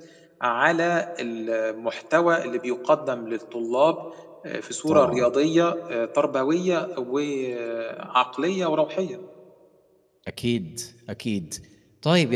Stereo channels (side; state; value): both; identical; correlation 1.00